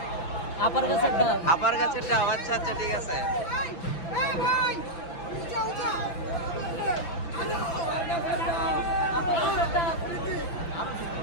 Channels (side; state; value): right; late; 5.9 ms